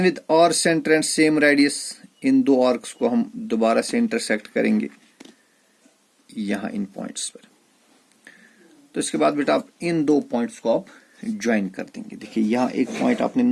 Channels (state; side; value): identical; both; correlation 1.00